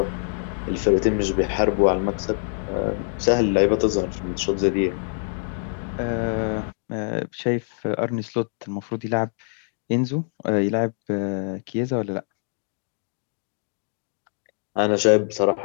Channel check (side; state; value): right; silent; 62 dB below the other